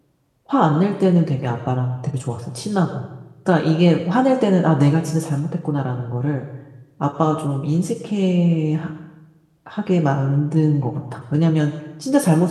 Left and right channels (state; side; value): identical; both; correlation 1.00